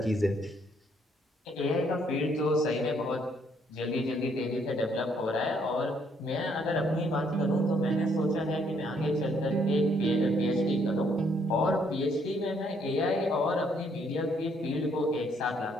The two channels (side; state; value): both; normal; correlation 0.68